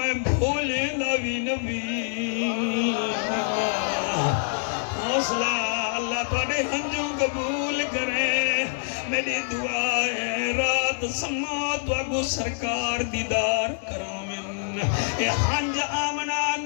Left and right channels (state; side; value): silent; right; digital silence